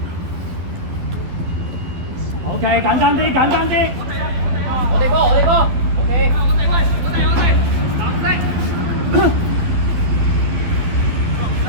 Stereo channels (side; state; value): left; late; 11 ms